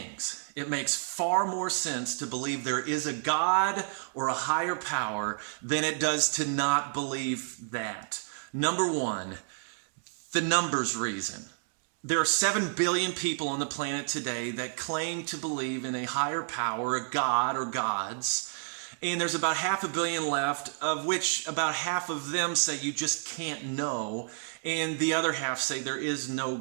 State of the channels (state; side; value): silent; left; 58 dB below the other